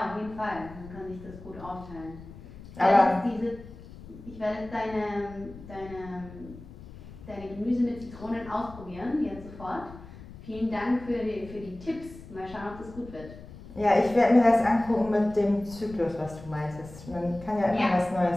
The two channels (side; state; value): left; noise; rumble, 16 dB below the sound